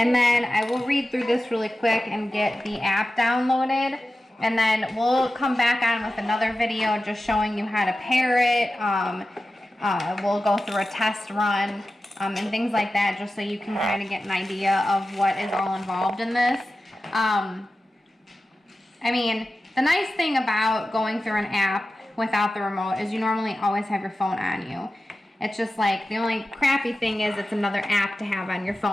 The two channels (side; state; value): both; normal; correlation 0.94